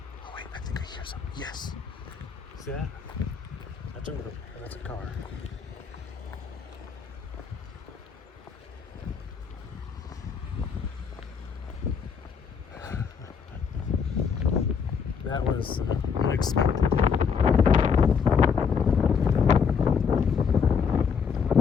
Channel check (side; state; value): right; quieter; 6.3 dB